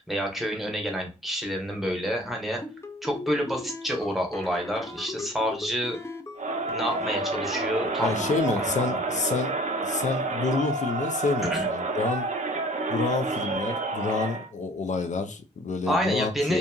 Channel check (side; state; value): both; normal; correlation 0.50